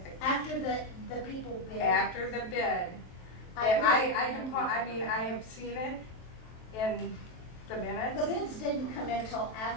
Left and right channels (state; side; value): late; right; 23 ms